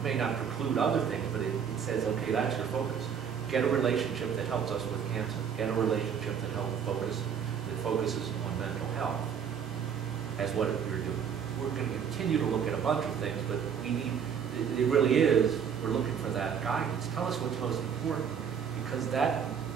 may not preclude other things, but it says, okay, that's your focus. Get a relationship that helps us with cancer. Get a relationship that focuses on mental health. as what you're doing. We're going to continue to look at a bunch of things, but we need, it really is, we're looking for that guidance. Tell us what's most important, because that,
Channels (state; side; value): quieter; left; 7.5 dB